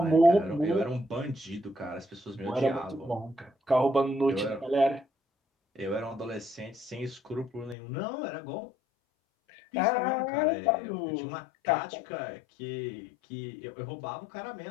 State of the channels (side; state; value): right; drops out; at 7.8 s